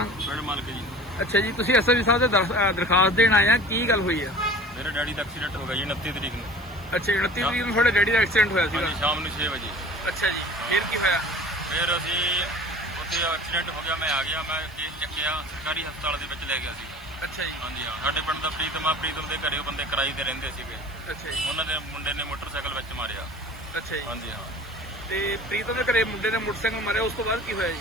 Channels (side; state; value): right; noise; hiss, 26 dB below the sound